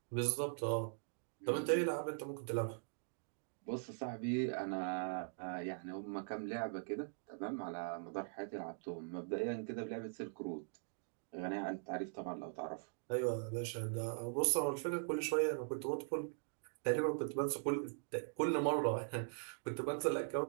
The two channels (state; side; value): silent; left; digital silence